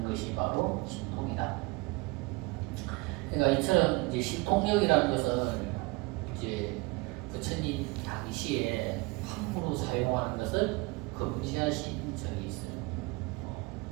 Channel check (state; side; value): quieter; left; 25.5 dB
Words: 것이 바로 신통이다. 그러니까 이처럼 이제 신통력이라는 것은 이제 부처님 당시에 함부로 사용하는 것을 금지하신 적이 있어요.